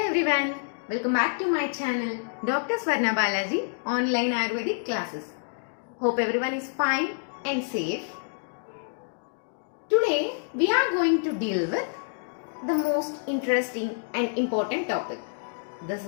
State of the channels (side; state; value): right; silent; digital silence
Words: everyone, welcome back to my channel Dr. Swarna Balaji online Ayurvedic classes. Hope everyone is fine and safe. Today we are going to deal with the most interesting and important topic. This